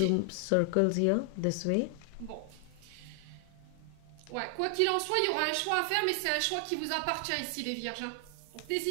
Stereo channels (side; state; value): both; different; correlation 0.00